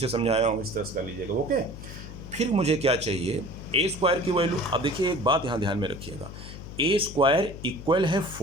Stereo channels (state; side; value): noise; left; hum, 12 dB below the sound